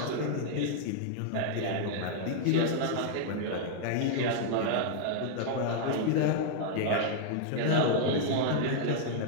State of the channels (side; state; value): both; different; correlation -0.01